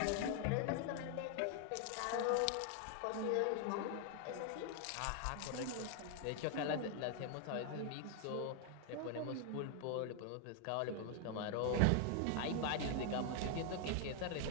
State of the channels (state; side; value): different; both; correlation 0.00